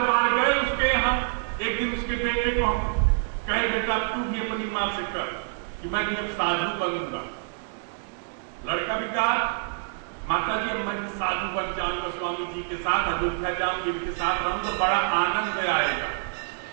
बार गए उसके यहाँ। एक दिन उसके बेटे को हम कहे बेटा तू भी अपनी मां से कर कि मैं जब साधु बनूंगा। लड़का भी कहा माता जी मैं साधु बन जाऊंगा, स्वामी जी के साथ अयोध्या जाऊंगी, इनके साथ रहूंगा तो बड़ा आनंद आएगा,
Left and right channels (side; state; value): left; silent; 60 dB below the other